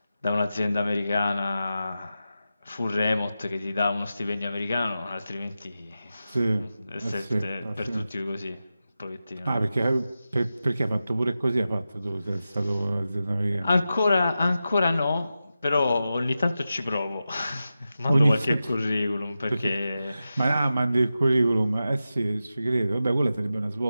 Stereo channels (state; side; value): inverted; both; correlation -0.92